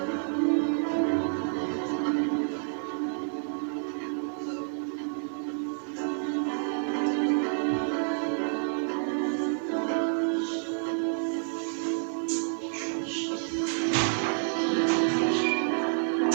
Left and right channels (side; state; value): left; silent; digital silence